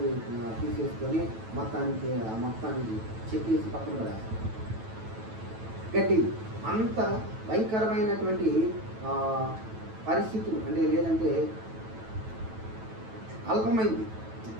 తీసేసుకొని మొత్తానికి చెక్కేసి పక్కన పడేస్తాం. గడ్డి అంత భయంకరమైనటువంటి పరిస్థితులు అంటే లేదంటే అల్పమైంది.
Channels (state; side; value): late; left; 9.1 ms